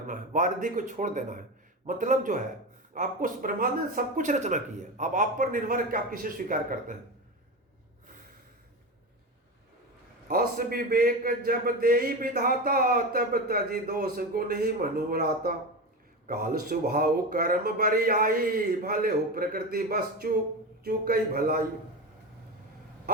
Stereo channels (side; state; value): both; normal; correlation 0.21